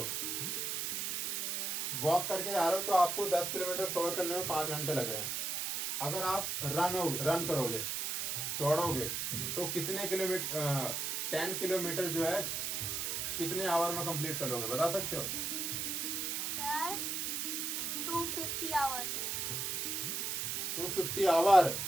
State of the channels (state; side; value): noise; right; hiss, 1 dB below the sound